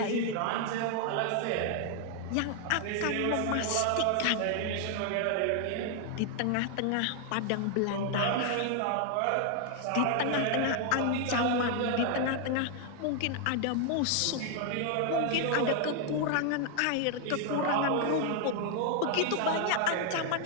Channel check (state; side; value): different; both; correlation 0.00